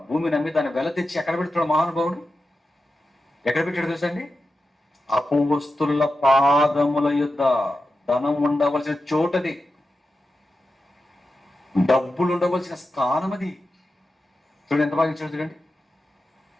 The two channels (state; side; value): normal; both; correlation 0.90